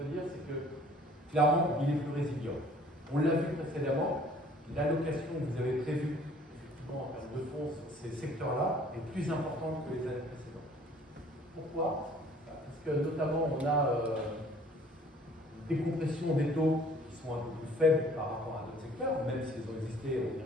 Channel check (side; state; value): both; normal; correlation 0.55